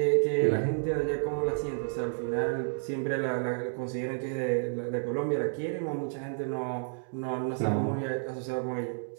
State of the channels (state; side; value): silent; left; digital silence